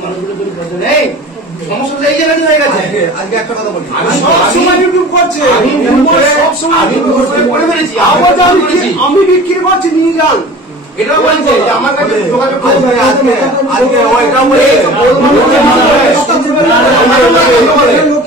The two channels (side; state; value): both; normal; correlation 0.41